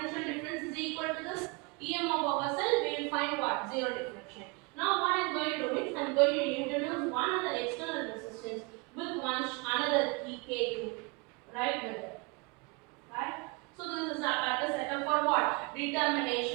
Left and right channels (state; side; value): quieter; left; 29.8 dB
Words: difference is equal to this EMF of a cell. We will find what? Zero deflection. Now what I am going to do is I am going to introduce one other external resistance with another K2, right? With it. Right? So this is a setup for what?